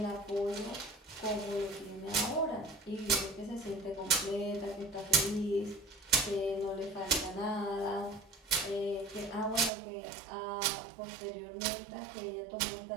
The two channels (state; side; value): drops out; left; at 9.7 s